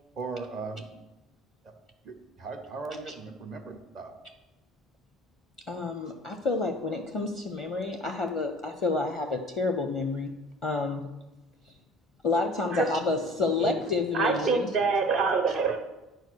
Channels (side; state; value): both; normal; correlation 0.46